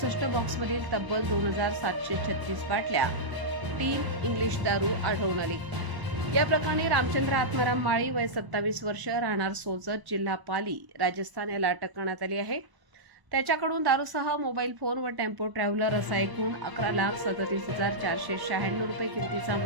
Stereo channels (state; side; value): late; left; 1.0 ms